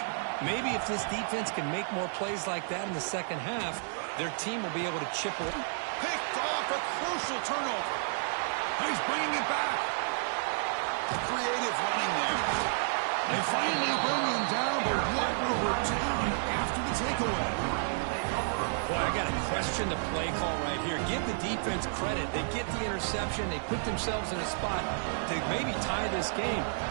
Maybe if this defense can make more plays like that in the second half, their team will be able to chip away. Picked off a crucial turnover. He's bringing it back. Creative running there. They finally bring him down, but what a return after the takeaway. Boy, I got to question the play call right here. Give the defense credit. They get the interception. They put themselves in a spot to maybe tie this game.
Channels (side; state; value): left; silent; digital silence